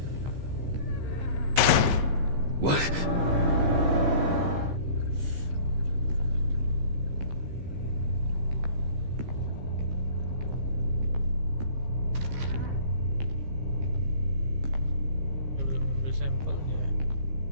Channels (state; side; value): late; left; 15 ms